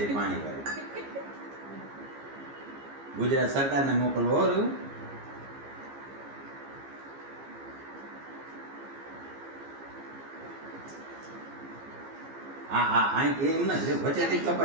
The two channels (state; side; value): late; left; 15 ms